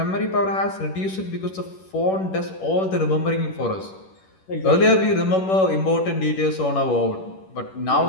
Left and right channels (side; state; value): right; late; 11 ms